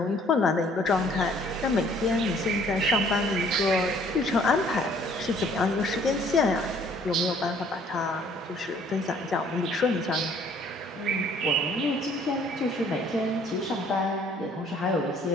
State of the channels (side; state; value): both; normal; correlation 0.59